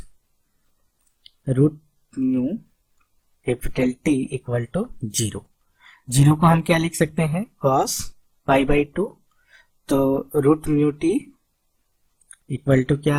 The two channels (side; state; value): both; identical; correlation 1.00